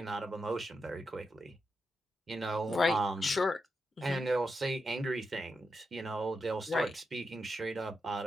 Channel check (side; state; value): both; normal; correlation 0.86